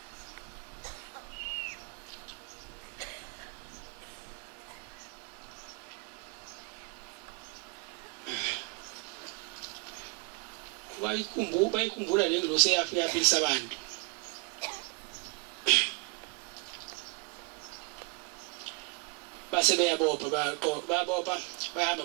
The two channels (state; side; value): quieter; left; 31.2 dB